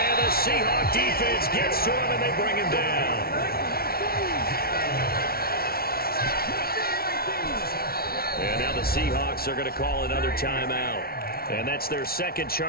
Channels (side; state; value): right; late; 0.44 ms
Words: the Seahawk defense gets to him, and they bring him down. And now the Seahawks are going to call another timeout. And that's their 2nd